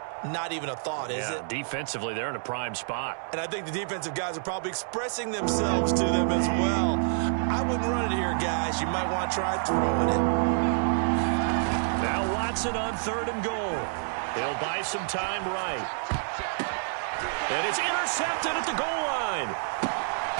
Not even a thought, is it? Defensively, they're in a prime spot. And I think the defensive guys are probably expressing themselves to them as well. I wouldn't run it here, guys. You might want to try throwing it. Now Watson on 3rd and goal. He'll buy some time right. And it's intercepted at the goal line.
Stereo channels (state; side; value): silent; left; digital silence